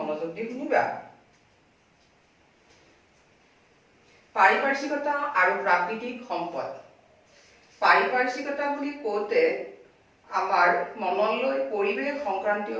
দি শুনিবা। পাৰিপাৰ্শ্বিকতা আৰু প্ৰাকৃতিক সম্পদ। পাৰিপাৰ্শ্বিকতা বুলি কওঁতে আমাৰ মনলৈ পৰিৱেশ সংক্ৰান্তীয়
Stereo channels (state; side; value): identical; both; correlation 1.00